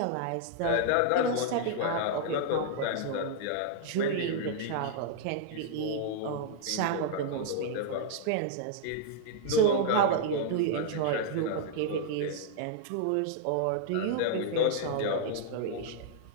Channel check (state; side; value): different; both; correlation -0.01